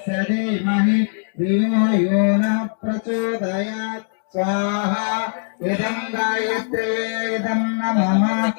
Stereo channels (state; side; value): silent; right; digital silence